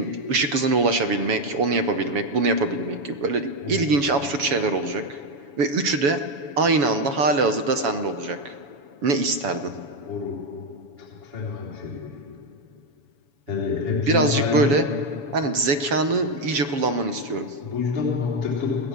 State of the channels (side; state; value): left; late; 7.1 ms